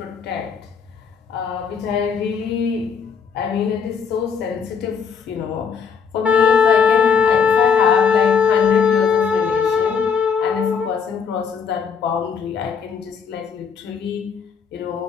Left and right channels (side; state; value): right; quieter; 6.4 dB